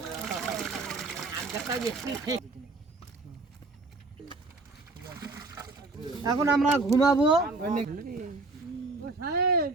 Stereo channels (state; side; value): quieter; left; 3.5 dB